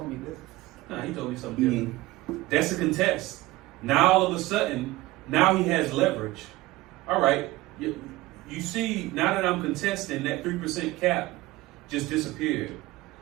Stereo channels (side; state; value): left; quieter; 18.7 dB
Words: me this. nah, he told me something different. That's a contest. Now all of a sudden, now he has leverage. All right, you see, now that I'm contesting, that 3% cap just disappeared.